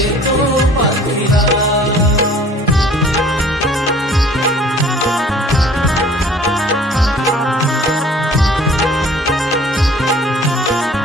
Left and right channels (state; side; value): normal; both; correlation 0.51